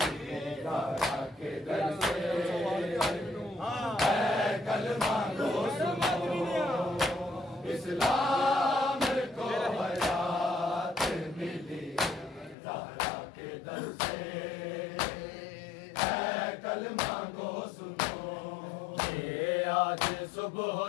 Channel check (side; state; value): right; drops out; at 12.6 s